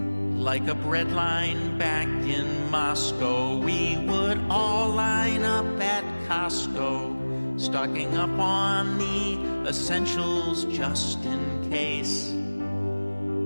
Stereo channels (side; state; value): both; inverted; correlation -1.00